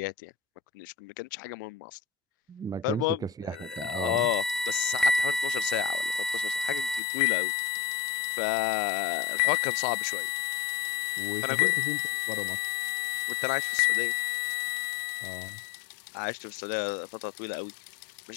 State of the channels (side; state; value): right; drops out; at 7.0 s